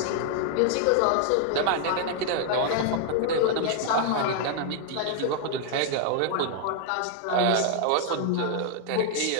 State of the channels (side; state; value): both; different; correlation 0.00